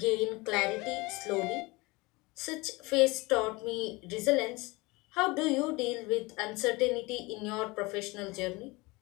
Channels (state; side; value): quieter; right; 23.8 dB